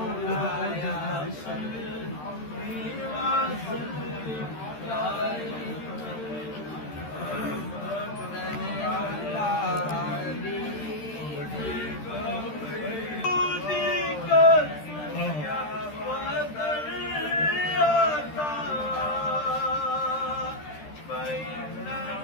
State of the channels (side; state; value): right; late; 13 ms